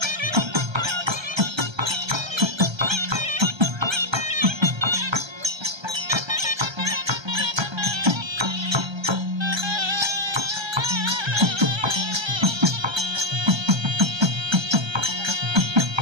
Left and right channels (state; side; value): late; left; 1.3 ms